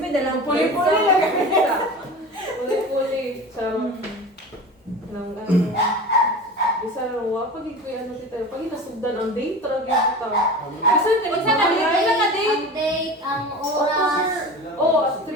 na lang. Puli-puli lang. Puli-puli. Sa nang ano. Isa lang wa pag ikoy ano tita. Pag inasugdan ang date talaga kita. Isa ka Unsa ka date? Kailan ka date? Ang date, ang oras. Oh, 3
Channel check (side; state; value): both; normal; correlation 0.33